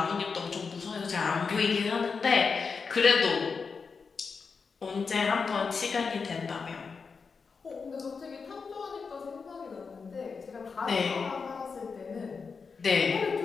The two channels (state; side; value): quieter; right; 5.2 dB